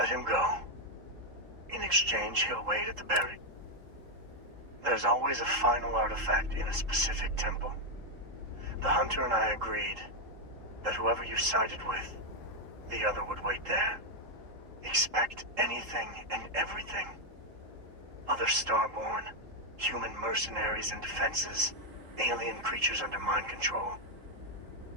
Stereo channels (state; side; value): late; left; 3.7 ms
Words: him go. In exchange, he'll wait at the buried. There's always a final artifact in a specific temple. The hunter and I agreed that whoever you sided with, the other would wait there. Expect anything and everything. Other Starborn, human mercenaries and defenses, alien creatures under mind control.